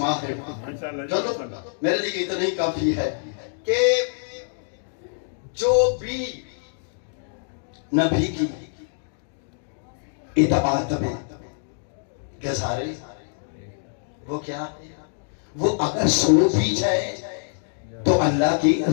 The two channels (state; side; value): silent; right; digital silence